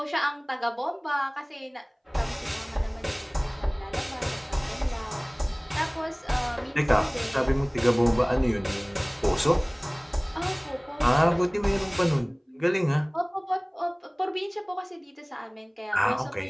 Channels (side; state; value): both; identical; correlation 1.00